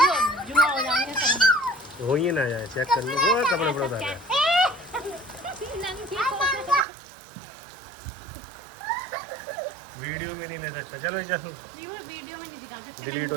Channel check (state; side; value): drops out; left; at 6.9 s